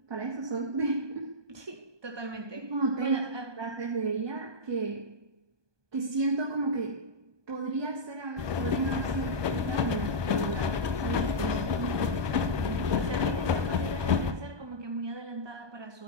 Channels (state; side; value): late; left; 1.2 ms